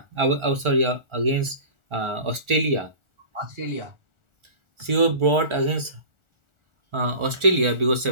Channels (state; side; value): late; left; 1.4 ms